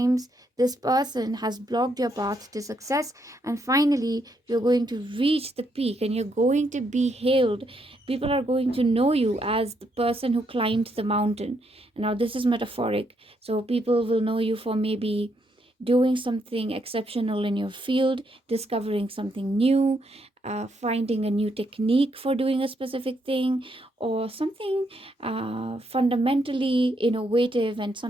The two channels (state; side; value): normal; both; correlation 0.76